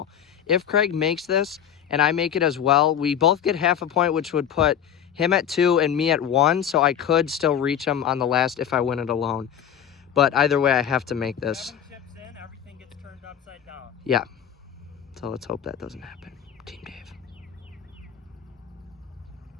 If Craig makes this and I make it as well, we both get half a point, which would put him at 2 and me at 1, so I could still reach him on the last if I win it alone. But either way, I have to make this. Chips in, everything gets turned upside down. Yeah. So let's hope that doesn't happen. Team Dave.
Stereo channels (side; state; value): right; quieter; 9.1 dB